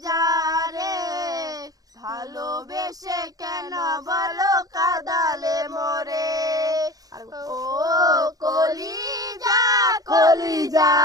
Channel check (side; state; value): left; late; 0.18 ms